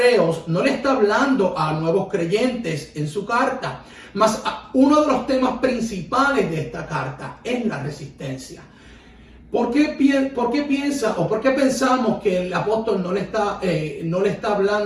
no le está hablando a nuevos creyentes en su carta, mas uno de los temas principales de esta carta es la resistencia. ¿Por qué piensa o por qué pensamos que el apóstol no le está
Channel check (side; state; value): both; identical; correlation 1.00